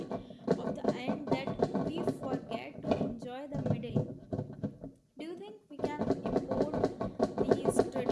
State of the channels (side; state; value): both; identical; correlation 1.00